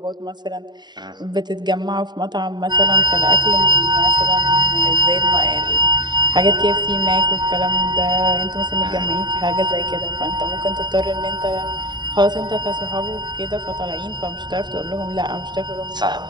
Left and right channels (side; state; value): left; late; 0.21 ms